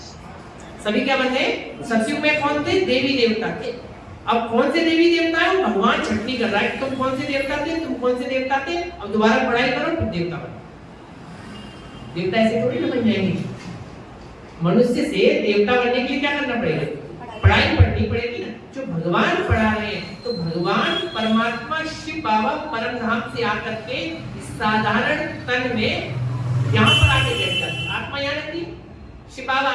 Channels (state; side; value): identical; both; correlation 1.00